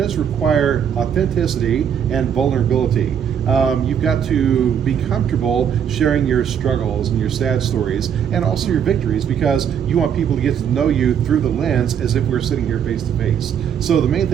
require authenticity and vulnerability. You've got to be comfortable sharing your struggles and your sad stories and also your victories, because you want people to get to know you through the lens as if we're sitting here face to face. So the main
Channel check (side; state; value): left; quieter; 8.4 dB